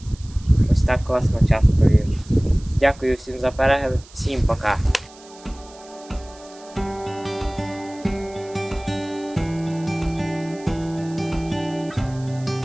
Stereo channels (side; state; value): right; noise; hiss, 23 dB below the sound